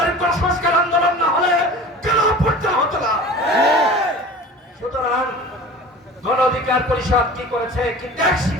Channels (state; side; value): normal; both; correlation 0.38